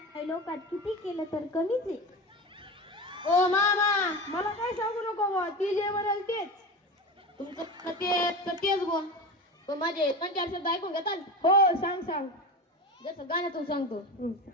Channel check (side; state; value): both; normal; correlation 0.26